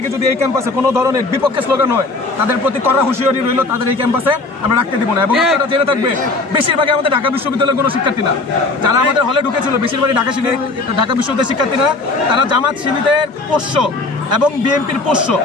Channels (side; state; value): right; quieter; 3.4 dB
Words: যদি এই ক্যাম্পাসে কোনো ধরনের বিপক্ষে স্লোগান হয় তাদের প্রতি কড়া হুঁশিয়ারি রইল, তাদের এই ক্যাম্পাসে আমরা রাখতে দিব না। এবং আপনারা জেনে থাকবে বেশিরভাগই আমাদের ঢাকা বিশ্ববিদ্যালয়ের কোনো শিক্ষার্থী না, যারা আমাদের হলে ঢুকেছিল বেশিরভাগই ঢাকা বিশ্ববিদ্যালয়ের শিক্ষার্থী না, তারা জামাত শিবিরের পোষ্য এবং বিএনপির পোষ্য।